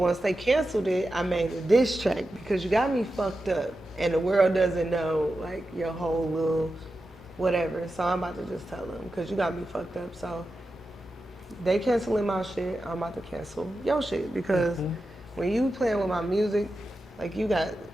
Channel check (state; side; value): normal; both; correlation 0.91